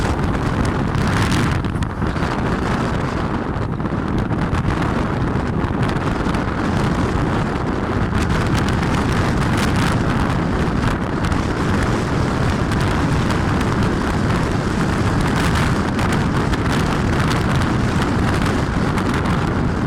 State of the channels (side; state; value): both; identical; correlation 1.00